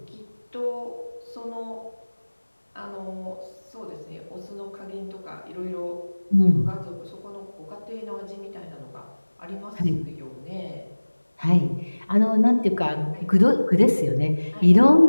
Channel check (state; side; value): inverted; both; correlation -1.00